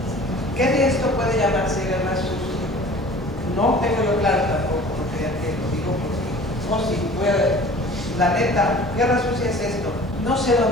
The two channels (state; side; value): normal; both; correlation 0.45